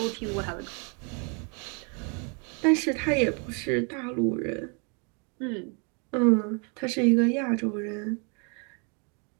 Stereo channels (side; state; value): left; quieter; 35.5 dB